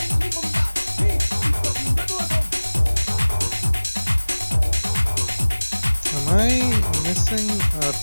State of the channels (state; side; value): inverted; both; correlation -1.00